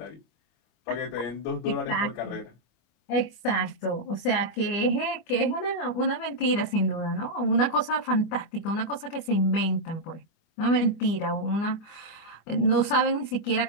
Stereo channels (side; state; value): right; late; 25 ms